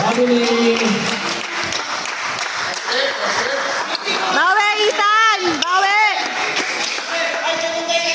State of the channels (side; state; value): both; identical; correlation 1.00